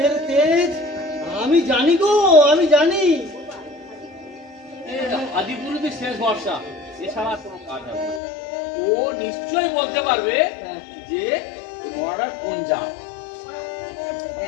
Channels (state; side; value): drops out; right; at 8.2 s